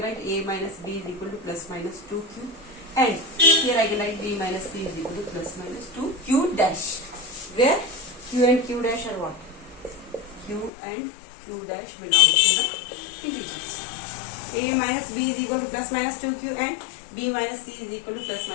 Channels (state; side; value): drops out; right; at 10.7 s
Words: write A minus B is equal to plus minus 2Q, and here I can write B minus C is equal to plus minus 2Q dash, where Q and Q dash are what? Q and Q dash belongs to the integers. A minus B is equal to plus minus 2Q and B minus C is equal to plus